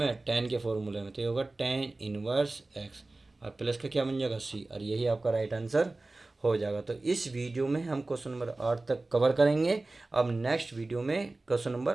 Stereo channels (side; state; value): left; quieter; 3.1 dB